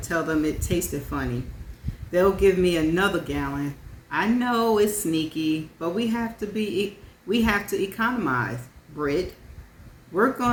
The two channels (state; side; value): identical; both; correlation 1.00